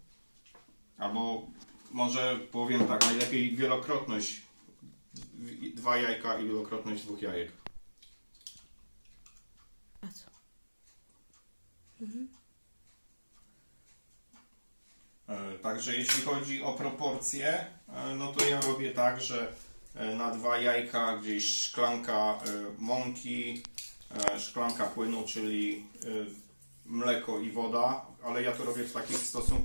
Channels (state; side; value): inverted; both; correlation -1.00